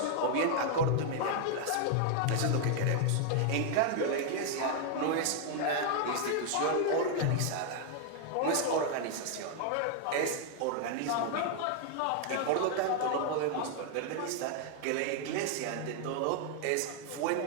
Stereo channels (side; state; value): both; different; correlation 0.00